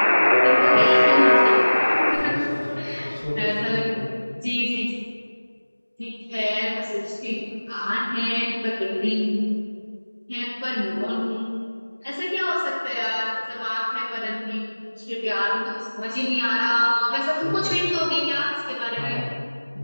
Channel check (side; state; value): both; inverted; correlation -1.00